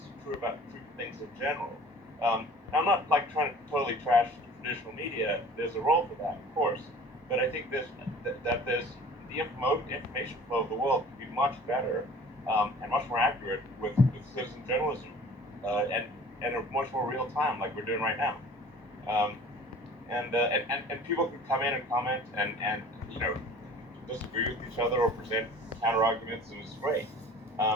true about things in general. I'm not like trying to totally trash traditional media. There's a role for that, of course. But I think there's the information flow of the world can be much better and much more accurate with citizen journalism and a much more real time, like we're doing right now. And people can come in and comment and disagree with each other or present counter arguments, and it's great.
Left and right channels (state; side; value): normal; both; correlation 0.46